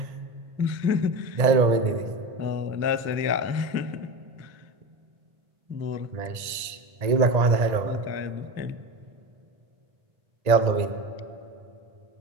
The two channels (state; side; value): late; left; 1.8 ms